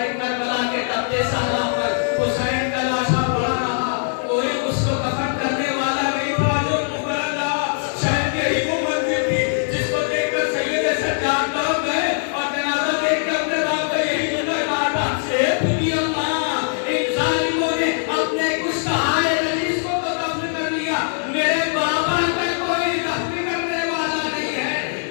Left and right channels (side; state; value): right; silent; 59 dB below the other